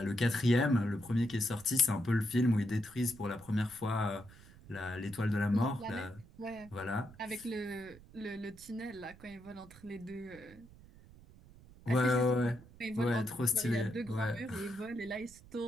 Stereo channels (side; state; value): right; noise; rumble, 21 dB below the sound